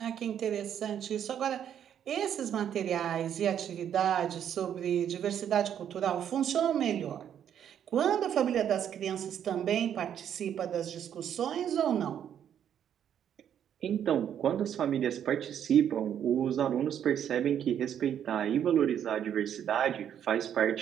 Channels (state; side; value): quieter; left; 9.4 dB